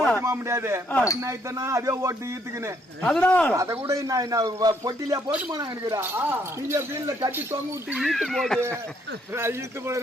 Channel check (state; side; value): normal; both; correlation 0.69